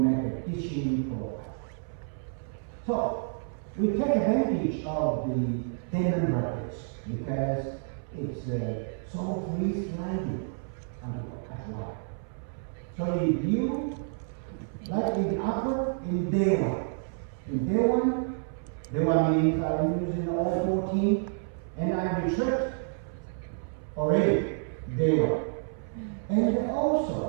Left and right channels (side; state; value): left; silent; 58 dB below the other